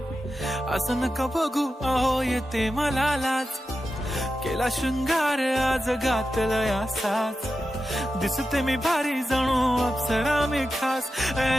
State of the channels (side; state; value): both; normal; correlation 0.91